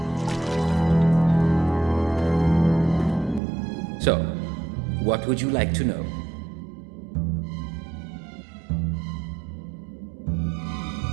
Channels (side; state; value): left; drops out; at 3.4 s